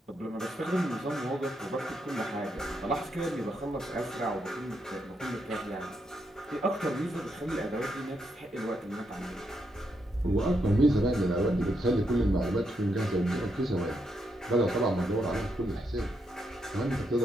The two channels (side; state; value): both; normal; correlation 0.80